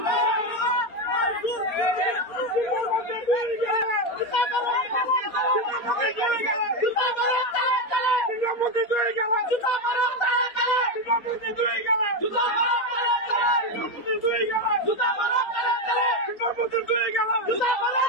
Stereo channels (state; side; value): late; right; 4.2 ms